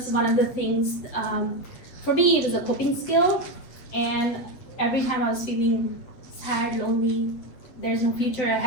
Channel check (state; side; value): late; right; 8.0 ms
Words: one of the things, for me, it was a coping skill. And every time I was feeling sad, lonely, there's no future